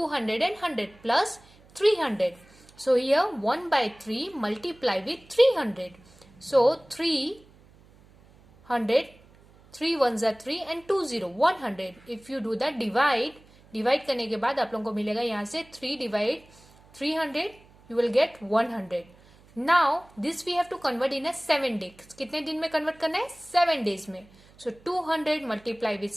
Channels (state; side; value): noise; right; hum, 27 dB below the sound